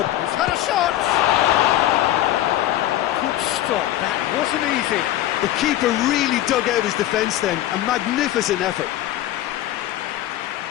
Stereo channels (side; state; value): right; quieter; 13.8 dB